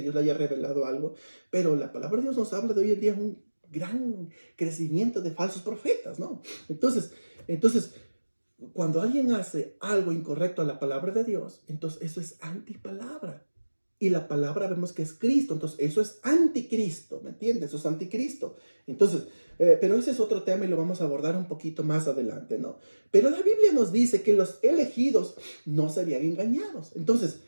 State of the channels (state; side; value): inverted; both; correlation -1.00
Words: le haya revelado algo, pero la palabra de Dios nos habla de hoy en día un gran crecimiento de falsos profetas, ¿no? Entonces, cuando alguien hace algo incorrecto a la palabra de Dios, entonces eso es antipalabra. Y la palabra vemos que es Cristo, entonces eso es anticristo, ¿me entiendes? Eso es anticristo. Entonces, pero ese es otro tema y lo vamos a abordar un poquito más adelante, ¿no? Pero la Biblia nos dice que los elegidos no serían engañados. Entonces,